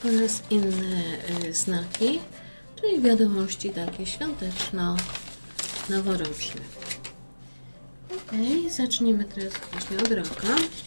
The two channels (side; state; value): both; inverted; correlation -1.00